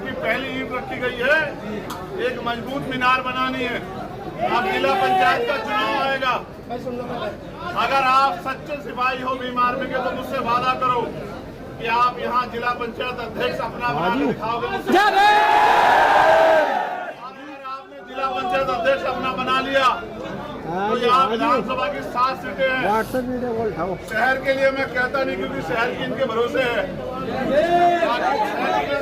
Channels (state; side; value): identical; both; correlation 1.00